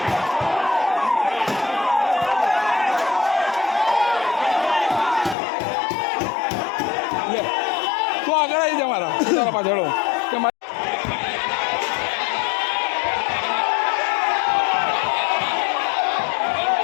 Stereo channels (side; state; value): right; drops out; at 5.4 s